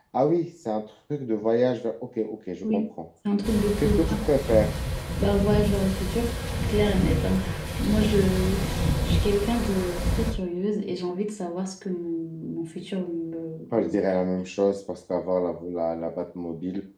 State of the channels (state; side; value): identical; both; correlation 1.00